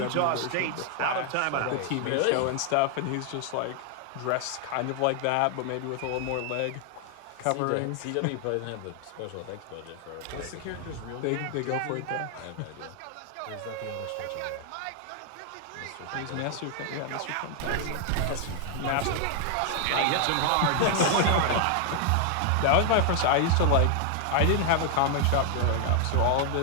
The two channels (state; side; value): different; both; correlation 0.00